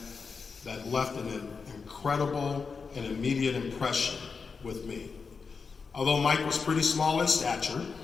that left an incredible and immediate impression with me. Although Mike was pretty small in stature,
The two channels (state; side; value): quieter; right; 5.1 dB